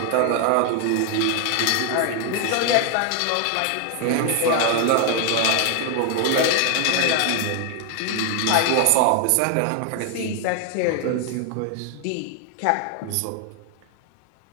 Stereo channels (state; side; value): different; both; correlation 0.00